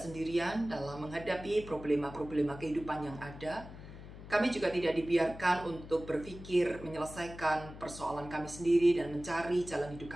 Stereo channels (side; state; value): left; noise; hum, 14 dB below the sound